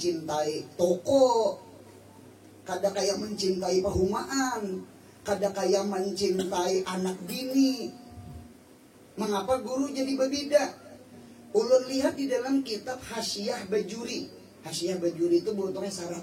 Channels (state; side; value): identical; both; correlation 1.00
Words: toko. Kada kayak mencintai perumahan. Kada kayak mencintai anak bini. Mengapa guru jadi berbeda? Ulun lihat di dalam kitab Hasyiah Bajuri. Hasyiah Bajuri itu bentuknya sarah